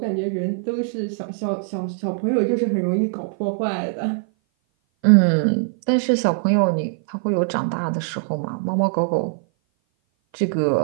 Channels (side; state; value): left; silent; 57 dB below the other